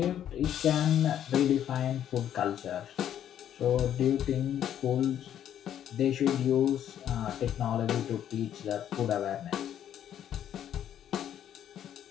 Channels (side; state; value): right; quieter; 10.3 dB